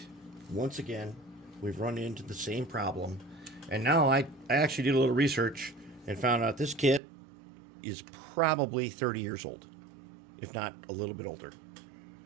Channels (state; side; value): drops out; left; at 7.0 s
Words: once again, we've run into the same problem. And now I actually did a little research and found out this kit is probably 30 years old, if not a little bit older.